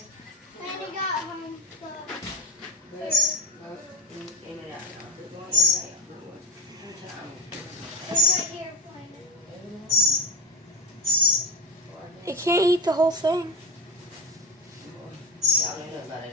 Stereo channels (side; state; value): both; normal; correlation 0.20